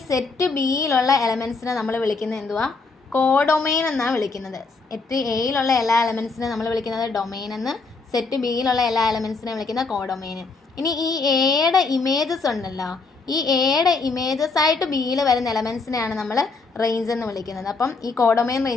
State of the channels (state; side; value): quieter; right; 4.1 dB